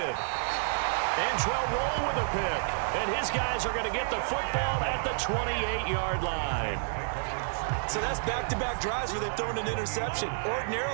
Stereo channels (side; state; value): left; silent; digital silence